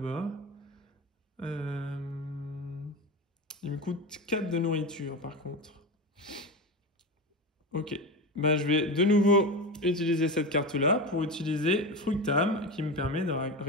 Il me coûte 4 de nourriture par contre. Ok. Bah, je vais de nouveau utiliser cette carte-là pour utiliser Fructam qui me permet de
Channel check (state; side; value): normal; both; correlation 0.21